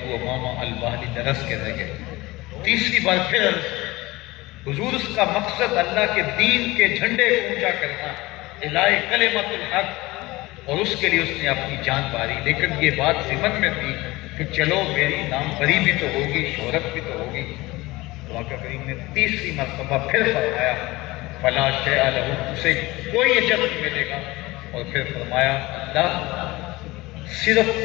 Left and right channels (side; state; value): right; quieter; 20.6 dB